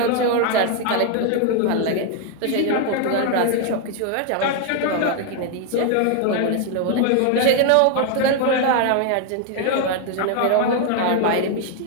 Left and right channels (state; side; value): different; both; correlation 0.01